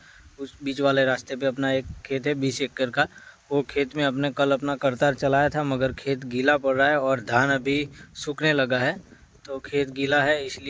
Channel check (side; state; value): both; identical; correlation 1.00